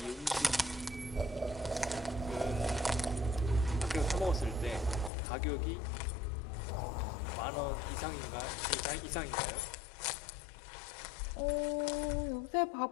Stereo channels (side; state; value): right; drops out; at 5.1 s